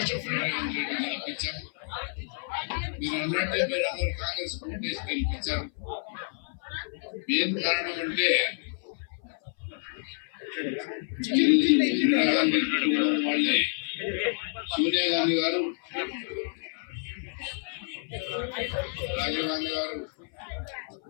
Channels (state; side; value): silent; right; 56 dB below the other